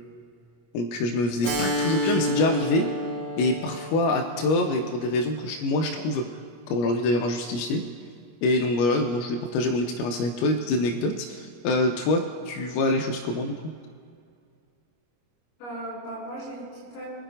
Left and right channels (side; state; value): right; late; 25 ms